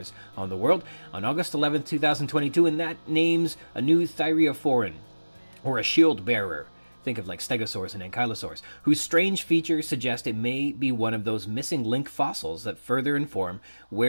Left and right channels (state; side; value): inverted; both; correlation -1.00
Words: on the world on August 11, 2022, and that names a new thyreophoran, or a shield bearer. Think of like stegosaurs and ankylosaurs, whose strange features suggest it may be one of those missing link fossils that further inform